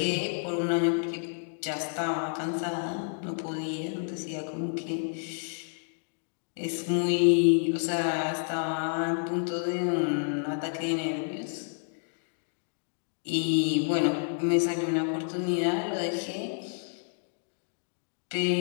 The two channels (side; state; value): right; silent; digital silence